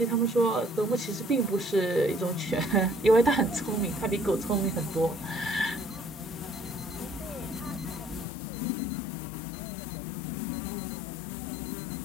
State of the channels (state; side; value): drops out; right; at 8.2 s